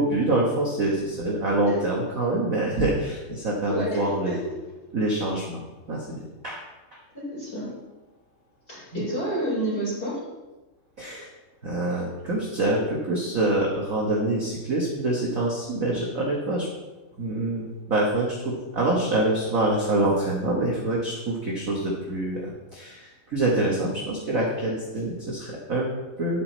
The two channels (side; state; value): right; late; 3.2 ms